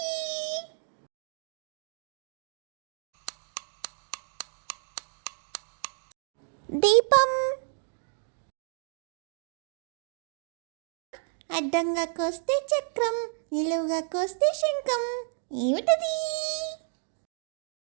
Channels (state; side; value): silent; left; digital silence